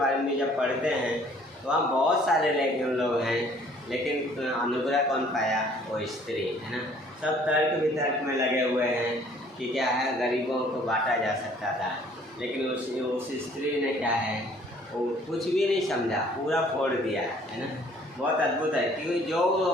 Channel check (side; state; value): both; normal; correlation 0.57